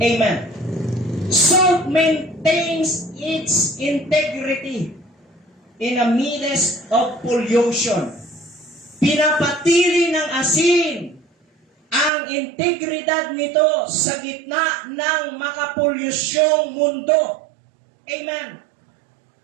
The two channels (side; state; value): left; drops out; at 12.1 s